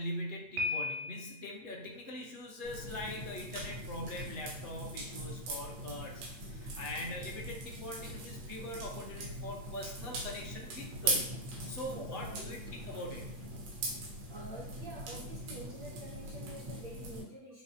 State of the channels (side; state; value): left; late; 8.6 ms